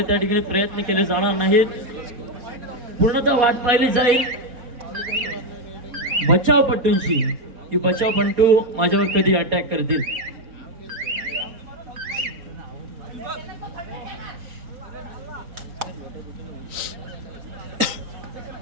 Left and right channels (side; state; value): left; late; 4.1 ms